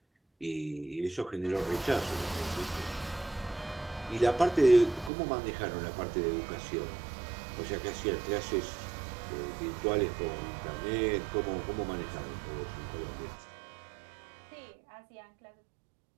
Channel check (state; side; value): drops out; left; at 5.1 s